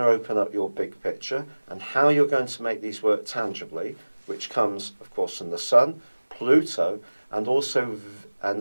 open up your big picture and how you're going to make these work tangibly, which comes, of course, from the Sun, Pluto, and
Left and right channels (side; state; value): both; inverted; correlation -1.00